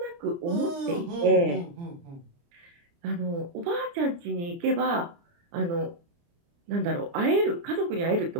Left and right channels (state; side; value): late; left; 29 ms